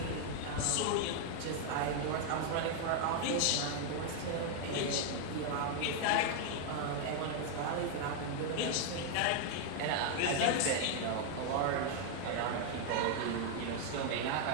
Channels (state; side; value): different; both; correlation 0.00